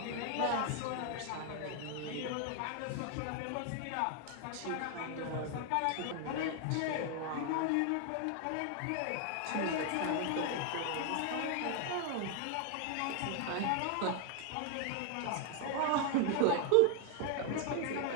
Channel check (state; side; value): different; both; correlation 0.00